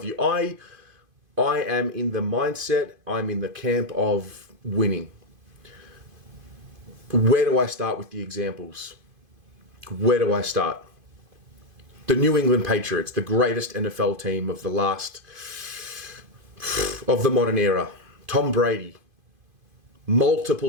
I am in the mindset, I'm in the camp of winning. Where do I start with the examples? Where do I start? The New England Patriots, the greatest NFL team of the modern era. Tom Brady,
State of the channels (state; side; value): late; left; 2.5 ms